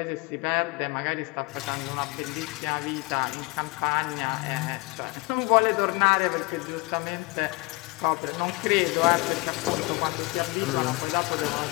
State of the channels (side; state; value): right; quieter; 25.5 dB